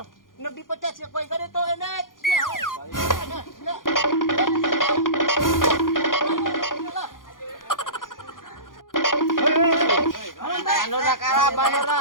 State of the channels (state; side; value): late; right; 0.90 ms